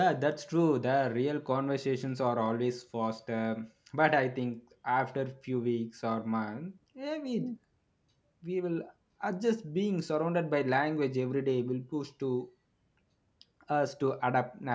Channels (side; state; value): both; identical; correlation 1.00